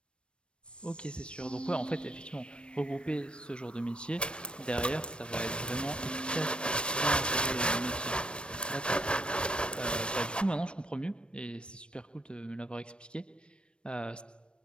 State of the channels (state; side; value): late; right; 0.057 ms